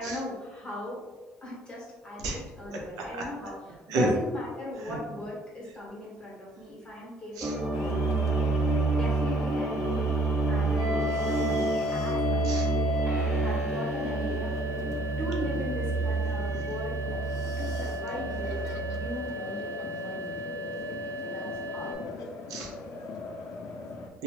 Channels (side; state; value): both; normal; correlation 0.57